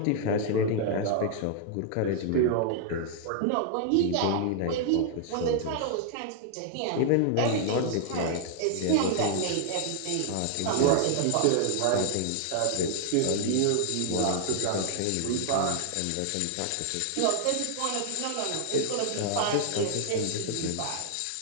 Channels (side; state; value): both; different; correlation 0.00